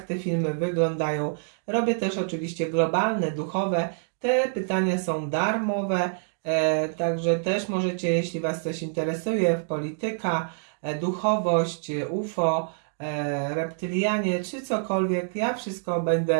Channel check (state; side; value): silent; left; digital silence